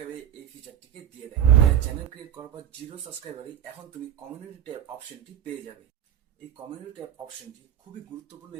এই ফিচারটিকে দিয়ে দেয়। চ্যানেল ক্রিয়েট করার পর 0 সাবস্ক্রাইবারে এখন তুমি কমিউনিটি ট্যাব অপশনটি পেয়ে যাবে। এই কমিউনিটি ট্যাব অপশনটি খুবই গুরুত্বপূর্ণ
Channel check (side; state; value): left; quieter; 10.1 dB